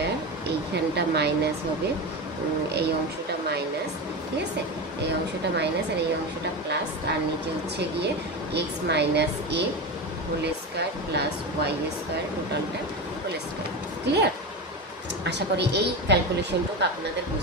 এইখানটা মাইনাস হবে, এই অংশটা মাইনাস, ঠিক আছে, এই অংশটা মাইনাস আর এই অংশটা প্লাস, আর নিচে হচ্ছে গিয়ে এক্স মাইনাস এ whole square plus Y square টোটালটা হোল স্কোয়ার। ক্লিয়ার? আশা করি এই ক্যালকুলেশনটুকু আপনাদের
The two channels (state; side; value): normal; both; correlation 0.21